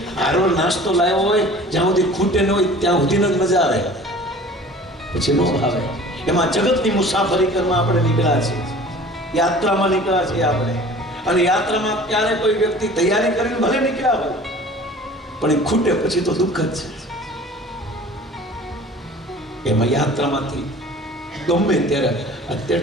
હારો નાસ્તો લાવ્યો હોય, જ્યાં સુધી ખૂટે ન હોય ત્યાં સુધીનો જ મજા આવે, પછી નો આવે. એમાં જગતની મુસાફરી કરવા આપણે નીકળ્યા છીએ, યાત્રામાં નીકળ્યા છીએ આપણે. અને યાત્રામાં ક્યારે કોઈ વ્યક્તિ તૈયારી કરીને ભલે નીકળ્યા હોય, પણ એ ખૂટે પછી તો દુઃખ જ છે. એમાં યાત્રામાંથી ગમે ત્યારે,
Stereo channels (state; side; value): normal; both; correlation 0.45